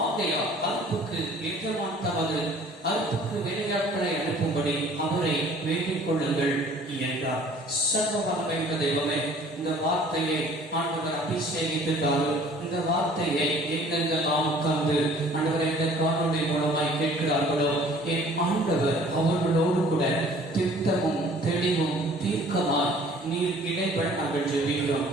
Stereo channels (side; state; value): both; normal; correlation 0.52